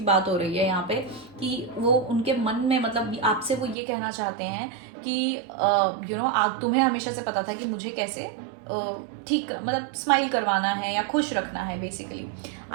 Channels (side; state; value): left; drops out; at 3.8 s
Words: बात हो रही है यहाँ पे कि वो उनके मन में मतलब आपसे वो ये कहना चाहते हैं कि आप तुम्हें हमेशा से पता था कि मुझे कैसे ठीक मतलब स्माइल करवाना है या खुश रखना है basically.